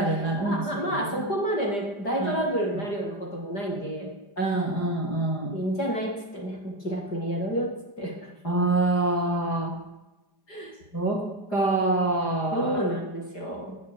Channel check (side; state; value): right; late; 5.0 ms